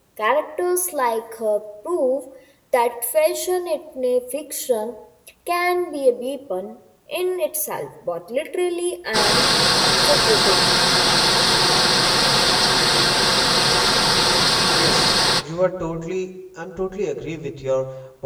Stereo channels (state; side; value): identical; both; correlation 1.00